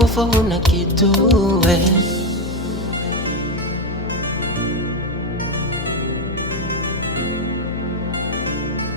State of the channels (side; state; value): left; noise; hum, 7 dB below the sound